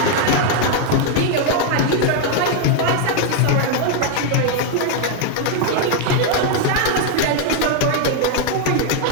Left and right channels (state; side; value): different; both; correlation 0.00